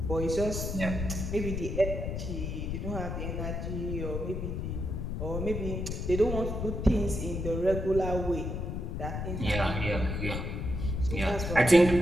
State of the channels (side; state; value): left; noise; rumble, 3 dB below the sound